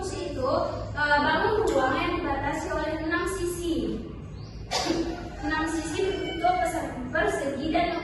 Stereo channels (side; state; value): both; identical; correlation 1.00